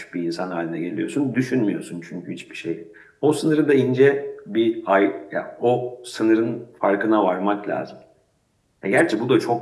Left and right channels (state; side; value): identical; both; correlation 1.00